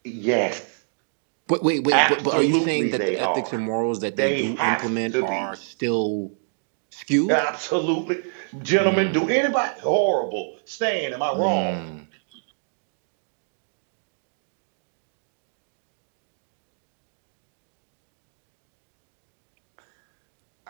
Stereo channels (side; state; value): left; silent; digital silence